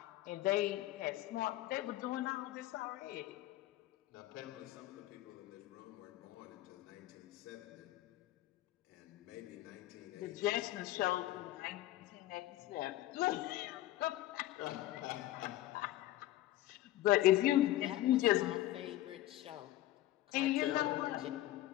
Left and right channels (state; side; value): quieter; right; 15.1 dB